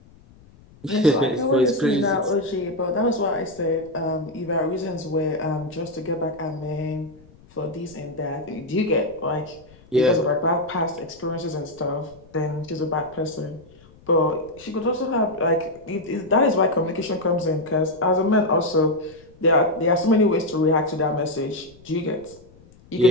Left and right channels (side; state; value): left; noise; rumble, 25 dB below the sound